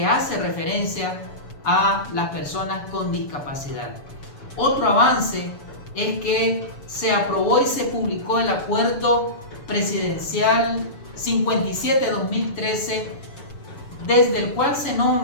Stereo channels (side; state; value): right; late; 7.0 ms